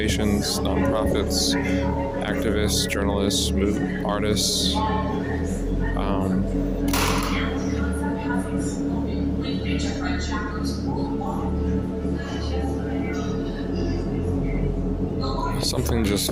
nonprofits, activists, journalists, artists. Something just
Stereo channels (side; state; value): both; identical; correlation 1.00